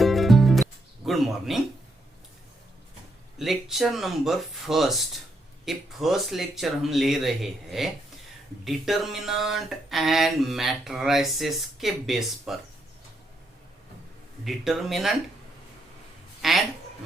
Good morning. Lecture number first, ये फर्स्ट लेक्चर हम ले रहे हैं डिटर्मिनेंट एंड मैट्रिसेस के बेस पर। डिटर्मिनेंट एंड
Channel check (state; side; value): normal; both; correlation 0.77